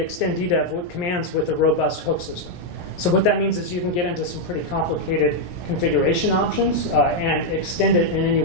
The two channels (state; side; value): late; right; 17 ms